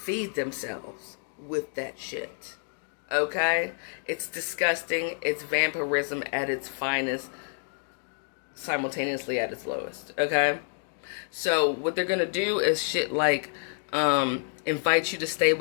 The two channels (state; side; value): silent; right; 59 dB below the other